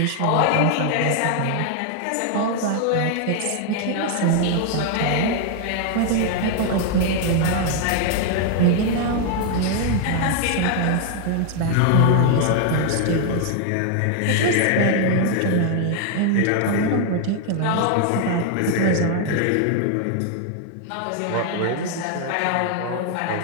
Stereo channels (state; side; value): different; both; correlation 0.00